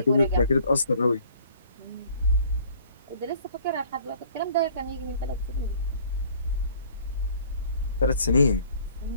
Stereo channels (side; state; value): both; inverted; correlation -0.55